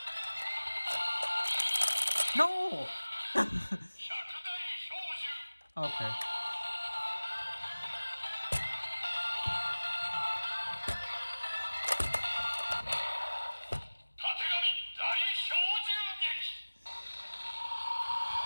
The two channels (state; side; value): inverted; both; correlation -1.00